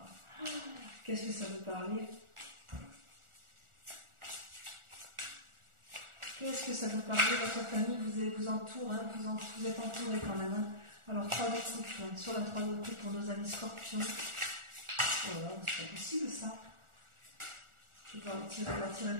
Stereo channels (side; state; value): left; late; 1.4 ms